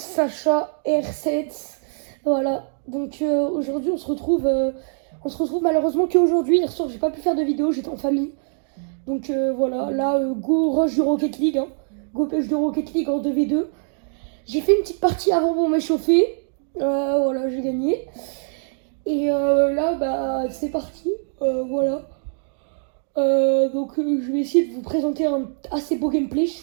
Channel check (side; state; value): left; silent; 58 dB below the other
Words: R7. Voilà, donc aujourd'hui on se retrouve malheureusement qu'aujourd'hui. Hier soir j'ai pas pu faire de vidéo, j'étais en famille. Donc voilà, là go rush de Rocket League, hein. Go pêche de Rocket League en 2v2. J'ai fait une petite partie avant pour m'échauffer. Voilà, j'ai gagné. Et là bah c'est parti, voilà. Je vais essayer de vous présenter un assez beau gameplay. Je